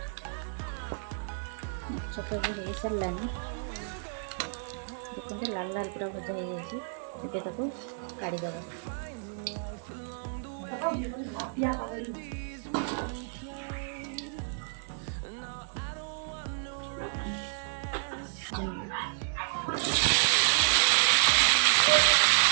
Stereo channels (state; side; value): silent; left; digital silence